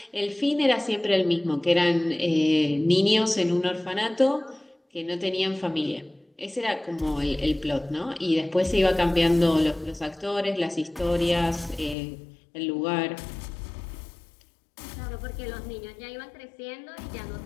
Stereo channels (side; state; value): right; drops out; at 12.0 s